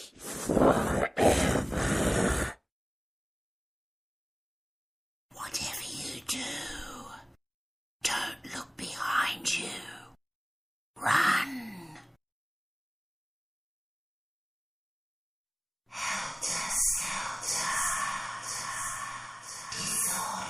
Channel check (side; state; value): both; identical; correlation 1.00